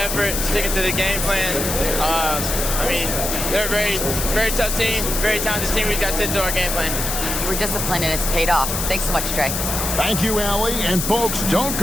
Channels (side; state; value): left; noise; hiss, 2 dB below the sound